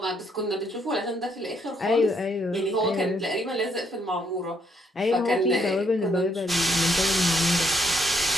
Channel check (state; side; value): normal; both; correlation 0.72